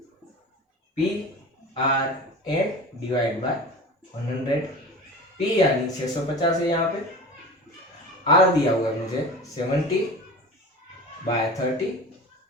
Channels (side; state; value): both; normal; correlation 0.34